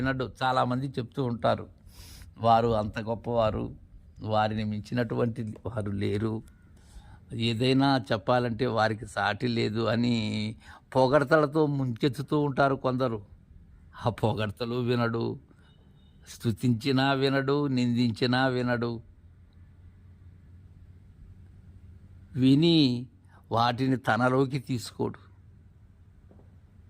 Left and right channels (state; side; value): identical; both; correlation 1.00